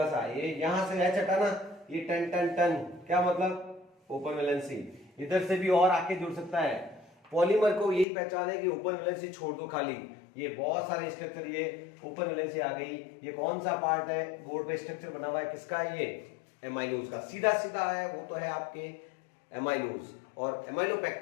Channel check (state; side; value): drops out; right; at 8.1 s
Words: सा, ये यहां से H हटाना, ये टन टन टन, क्या मतलब, ओपन वैलेंसी। इधर से भी और आके जुड़ सकता है। पॉलीमर को यही पहचान है कि ओपन वैलेंसी छोड़ दो खाली। ये बहुत सारे स्ट्रक्चर, ये ओपन वैलेंसी आ गई। ये कौन सा पार्ट है, बोर्ड पे स्ट्रक्चर बना हुआ है, किसका है, ये एमाइलोज का। सीधा सीधा है, वो तो है आपके एमाइलोज। और